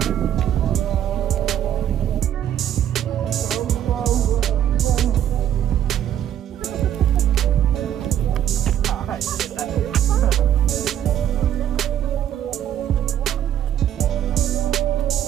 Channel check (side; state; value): left; quieter; 10.6 dB